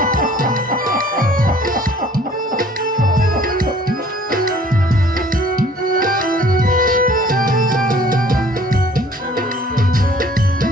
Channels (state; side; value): normal; both; correlation 0.54